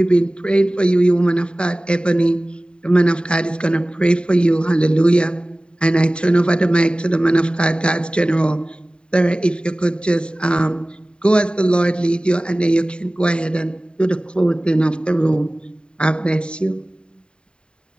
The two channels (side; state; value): right; late; 0.051 ms